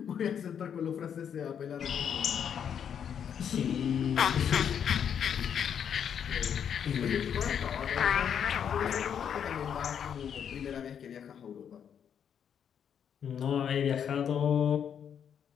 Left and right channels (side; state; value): right; quieter; 8.2 dB